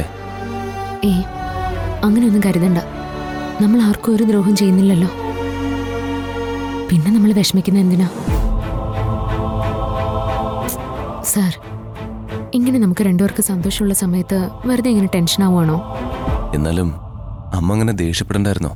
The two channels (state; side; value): identical; both; correlation 1.00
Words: അങ്ങനെയൊന്നും കരുതണ്ട. നമ്മൾ ആർക്കും ഒരു ദ്രോഹം ചെയ്യുന്നില്ലല്ലോ. പിന്നെ നമ്മൾ വിഷമിക്കുന്ന എന്തിനാ? സാർ, ഇങ്ങനെ നമുക്ക് രണ്ടുപേർക്ക് സന്തോഷമുള്ള സമയത്ത് വെറുതെ ഇങ്ങനെ ടെൻഷൻ ആവുകയാണോ? എന്നാലും അമ്മ അങ്ങനെ ദേഷ്യപ്പെടണ്ടായിരുന്നോ?